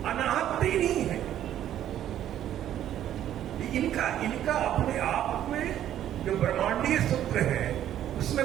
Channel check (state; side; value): quieter; left; 11.4 dB